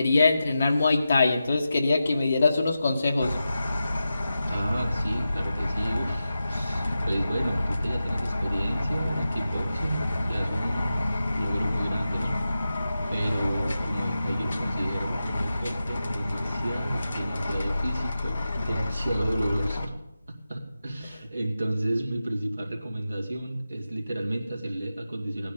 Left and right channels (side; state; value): both; inverted; correlation -0.92